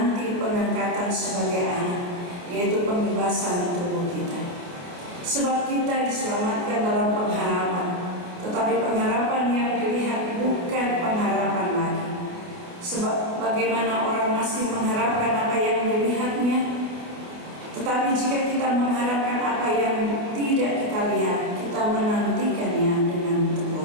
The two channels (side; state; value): left; late; 28 ms